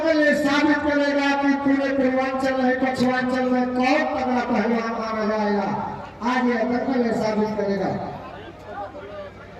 ये साबित करेगा कि पूरे पूर्वांचल है पश्चिमांचल में कौन तगड़ा पहलवान माना जाएगा। आज ये डबल ये साबित करेगा।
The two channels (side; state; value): both; identical; correlation 1.00